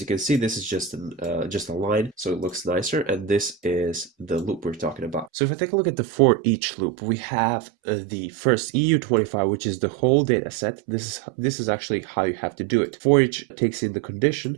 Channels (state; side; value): drops out; left; at 5.3 s